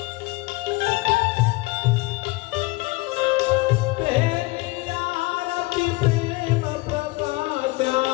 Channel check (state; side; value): quieter; right; 22.4 dB